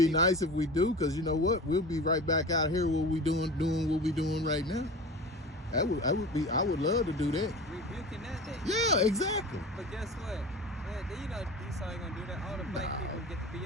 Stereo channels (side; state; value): both; normal; correlation 0.34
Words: nice if we do, because you know what? We'll be right back out here. What we doing what we doing right now. I would love to do that. Rebuking that day. Yeah, exactly. But guess what? You know Esau ain't gonna do that. All the black people get to